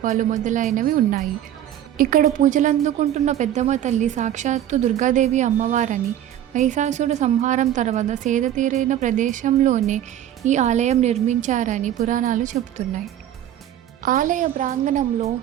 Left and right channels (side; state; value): left; quieter; 11.4 dB